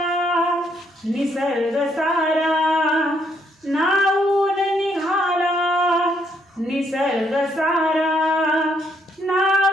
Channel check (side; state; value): both; normal; correlation 0.72